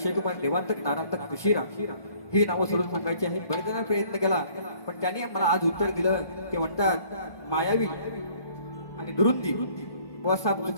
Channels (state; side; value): late; right; 1.2 ms